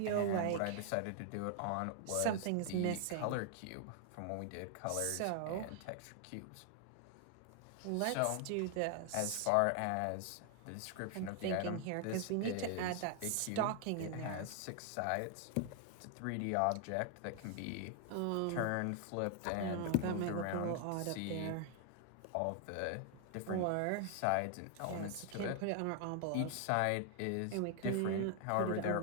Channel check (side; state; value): both; different; correlation 0.00